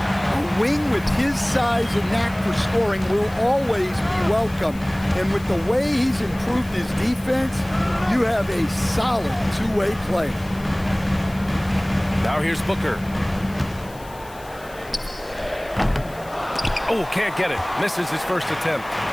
wing with his size and knack for scoring will always be welcome. And with the way he's improved his defense, you have a solid two-way player. Now here's Booker. Oh, can't get it. Misses his first attempt.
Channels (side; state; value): left; noise; hiss, 22 dB below the sound